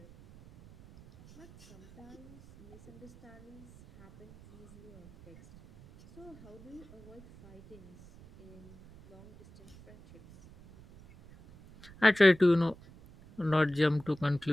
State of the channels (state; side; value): noise; right; rumble, 21 dB below the sound